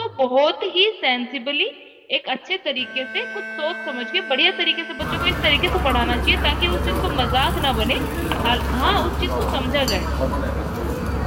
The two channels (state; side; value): identical; both; correlation 1.00